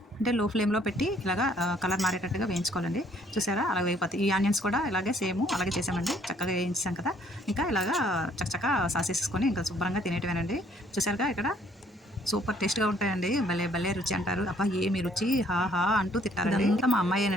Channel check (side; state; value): both; normal; correlation 0.63